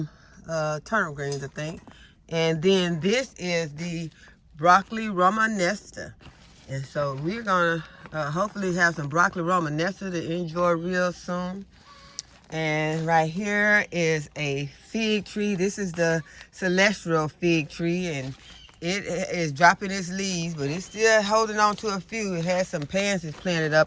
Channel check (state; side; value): identical; both; correlation 1.00